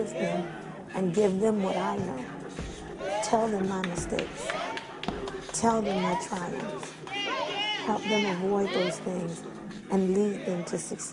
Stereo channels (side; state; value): both; identical; correlation 1.00